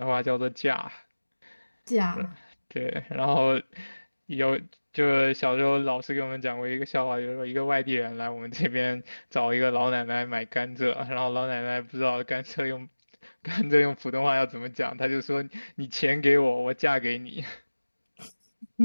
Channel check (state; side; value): inverted; both; correlation -1.00